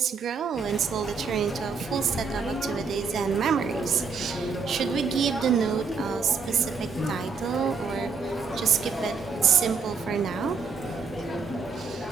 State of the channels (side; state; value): left; quieter; 5.1 dB